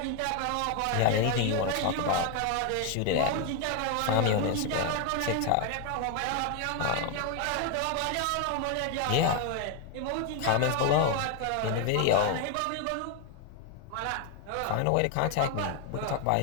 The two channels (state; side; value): different; both; correlation 0.01